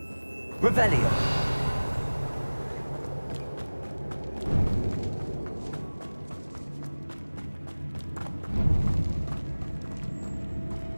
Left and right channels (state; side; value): inverted; both; correlation -1.00